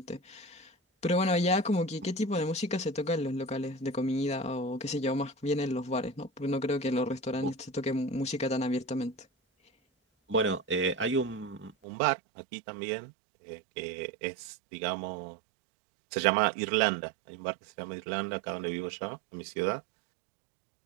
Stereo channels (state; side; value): drops out; left; at 11.8 s